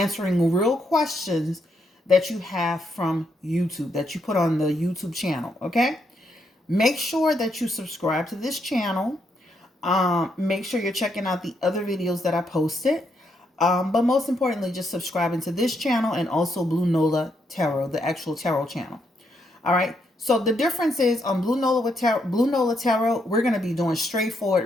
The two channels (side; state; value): both; normal; correlation 0.77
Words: real questions that you have from YouTube, that you put on the YouTube channel, okay? Make sure that you subscribe to this channel. Make sure you're checking out the other videos that I posted. But most importantly, just subscribing to this channel and also Blue Nola Tarot, the actual tarot channel. All right. So the difference is on Blue Nola Tarot, we're going to be doing